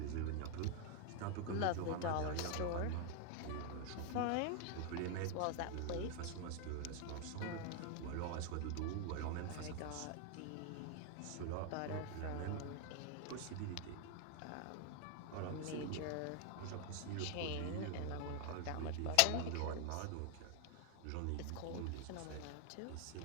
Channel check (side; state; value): both; different; correlation 0.00